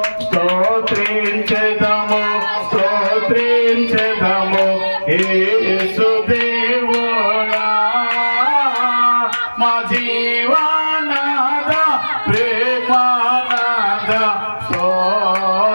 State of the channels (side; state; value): both; inverted; correlation -1.00